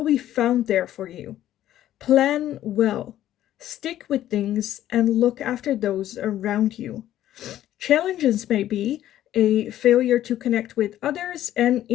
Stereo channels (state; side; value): quieter; right; 12.6 dB